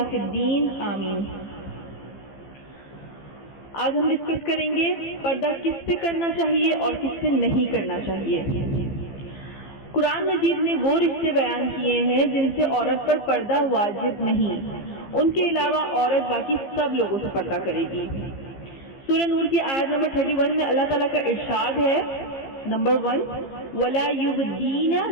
فی الدین، آمین۔ آج ہم ڈسکس کریں گے پردہ کس سے کرنا چاہیے اور کس سے نہیں کرنا چاہیے۔ قرآن مجید نے وہ رشتے بیان کیے ہیں جن سے عورت پر پردہ واجب نہیں، ان کے علاوہ عورت باقی سب لوگوں سے پردہ کرے گی۔ سورہ نور کی آیت نمبر 31 میں اللہ تعالیٰ کا ارشاد ہے، نمبر 1، وَلَا يُبْدِينَ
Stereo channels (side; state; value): right; late; 15 ms